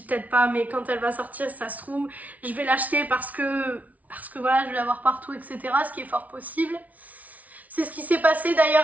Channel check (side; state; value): left; late; 0.072 ms